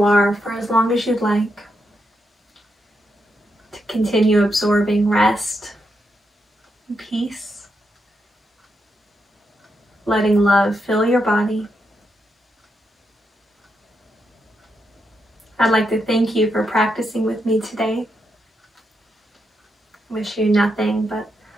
are for as long as you'd like. To continue absorbing rest and peace. Letting love fill your body. I'd like to thank you for practicing with me today. Wish you nothing but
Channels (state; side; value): normal; both; correlation 0.83